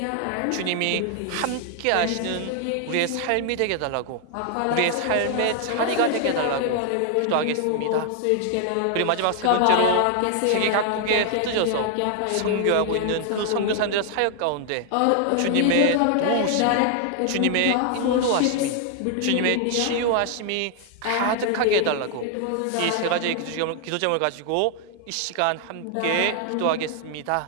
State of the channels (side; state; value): both; different; correlation 0.00